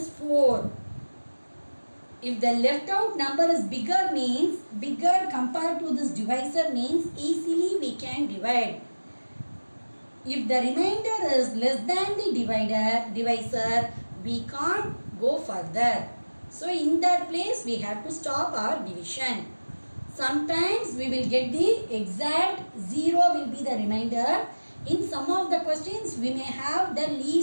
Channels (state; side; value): inverted; both; correlation -1.00